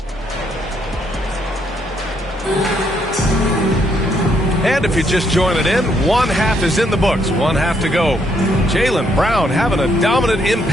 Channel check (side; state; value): both; normal; correlation 0.72